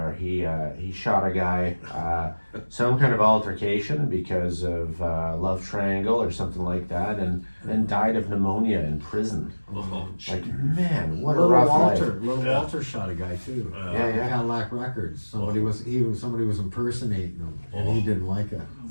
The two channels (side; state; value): both; inverted; correlation -1.00